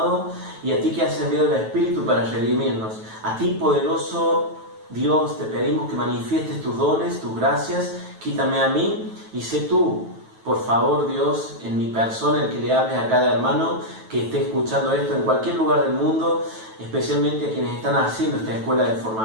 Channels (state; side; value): late; left; 9.2 ms